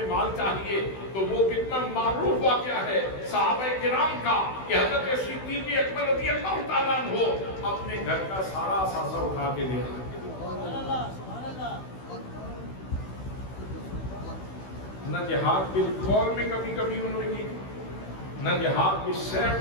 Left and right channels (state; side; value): late; right; 16 ms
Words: مال چاہیے، تو وہ کتنا معروف واقعہ ہے صحابہ کرام کا کہ حضرت صدیق اکبر رضی اللہ تعالیٰ عنہ اپنے گھر کا سارا اثاثہ اٹھا کے لے آئے۔ نہ جہاد بالقول میں کبھی کبھی انہوں نے کی، نہ جہاد بالسیف